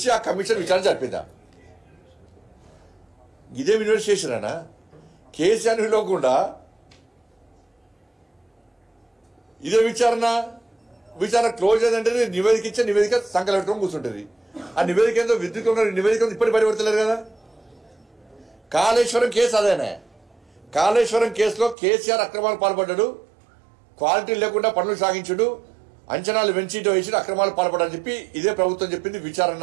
ఆ కమిషన్ విచారణ జరిపిందా? ఇదే ఇన్వెస్టిగేషన్ అనా? కేసీఆర్ పిలవకుండా ఇదే విచారణ క్లోజ్ అయిందంటే నివేదిక ఇచ్చే నివేదిక సంకలం పెట్టుకొని కూర్చుంటుంది. ఆ నివేదిక ఏందో విద్యుత్ నివేదిక ఇప్పటికి బయటపడతలేరు కదా. కాళేశ్వరం కేసు అదేనే. కాళేశ్వరం కేసులో కేసీఆర్ అక్రమాలు పాల్పడ్డాడు, క్వాలిటీ లేకుండా పనులు సాగించుడు, అంచనాలు పెంచిటో వేసి అక్రమాలు పాల్పడని చెప్పి ఇదే ప్రభుత్వం చెప్పింది. విచారణ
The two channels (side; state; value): left; drops out; at 21.8 s